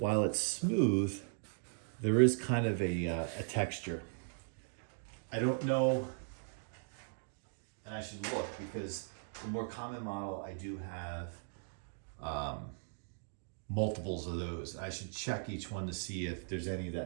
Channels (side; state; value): left; silent; digital silence